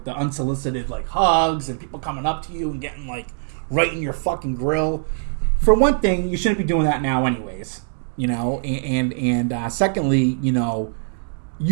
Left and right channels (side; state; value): left; silent; digital silence